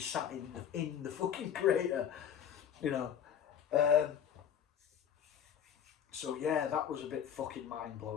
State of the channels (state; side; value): quieter; right; 8.8 dB